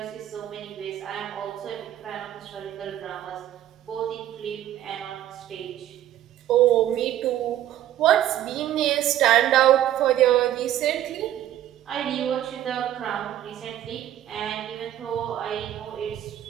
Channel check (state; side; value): quieter; left; 12.2 dB